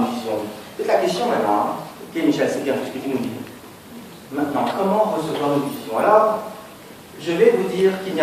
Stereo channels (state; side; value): identical; both; correlation 1.00